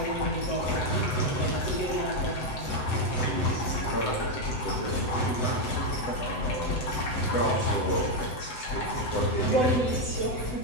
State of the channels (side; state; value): right; late; 7.9 ms